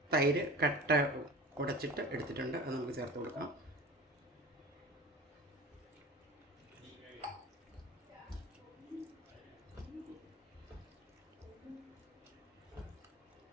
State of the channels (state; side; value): normal; both; correlation 0.35